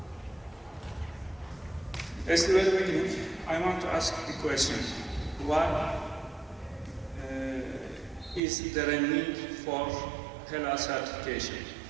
As the very beginning, I want to ask the question, why is there a need for halal certification?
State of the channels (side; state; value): left; drops out; at 8.4 s